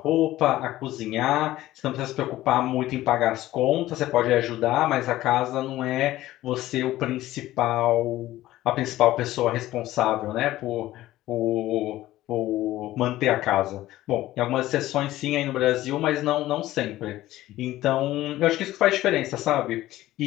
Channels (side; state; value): right; quieter; 15.5 dB